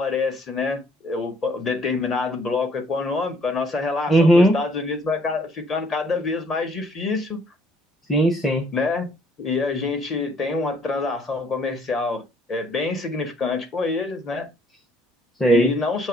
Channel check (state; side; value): normal; both; correlation 0.63